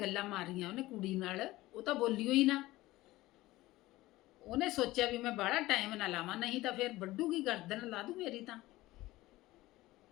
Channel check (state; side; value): quieter; right; 17.9 dB